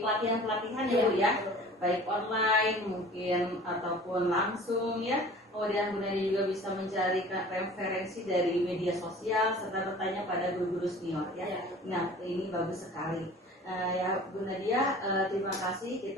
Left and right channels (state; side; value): normal; both; correlation 0.45